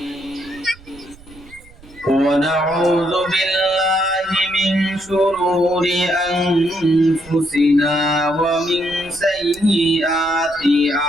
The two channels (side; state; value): right; noise; rumble, 23 dB below the sound